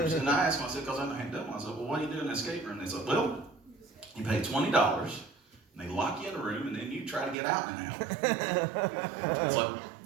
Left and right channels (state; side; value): drops out; left; at 7.4 s